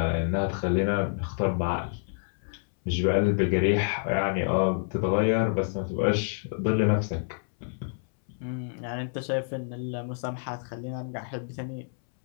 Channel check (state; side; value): silent; right; 59 dB below the other